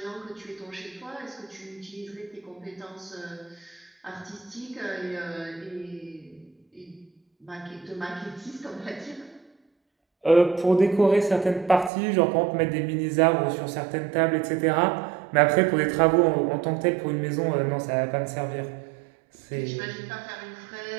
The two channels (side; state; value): left; drops out; at 11.9 s